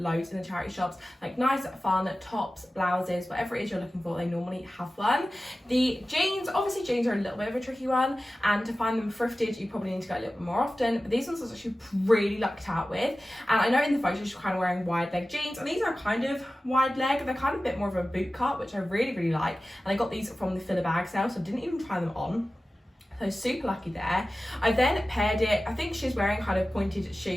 in the charity shops, like nice fun tops, blouses, whatever it is you're looking for, they normally have one. The jeans, obviously jeans are a little bit of a tricky one, and to find them thrifted you probably need to go a little bit more often, but these ones I was actually really lucked out with. And I know in the photos you're kind of wearing wide leg jeans, and these are kind of wide leg, they're kind of a bit more of a boot cut, which I really like, and I got these from the filler bag sale, so I didn't even try them on. So super lucky there. I then paired it, I think she's wearing kind of pointed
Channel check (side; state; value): both; normal; correlation 0.95